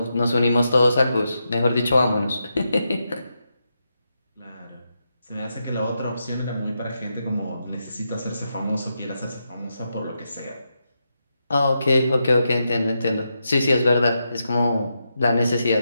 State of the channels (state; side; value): inverted; both; correlation -0.85